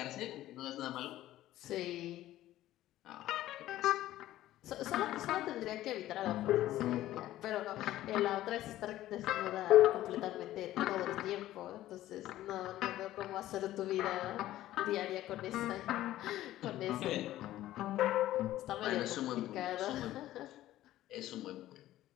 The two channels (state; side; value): quieter; right; 14.4 dB